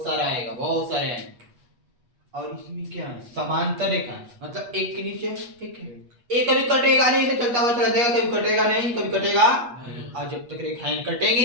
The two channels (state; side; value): late; left; 8.3 ms